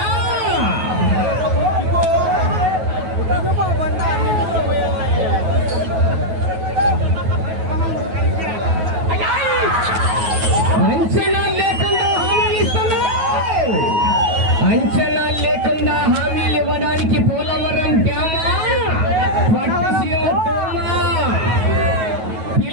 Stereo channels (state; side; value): late; left; 9.3 ms